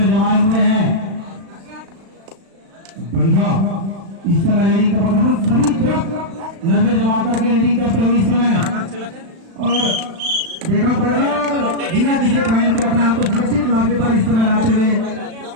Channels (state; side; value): late; left; 36 ms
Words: जमाए हुए हैं। बढ़िया इस समय रीडिंग का पता सभी तरफ नजर जमा करके रीडिंग करते हुए इस समय और देखा पड़ेगा बिना किसी पॉइंट को अपने आप को सुरक्षित लाभे पर इस समय लाते हुए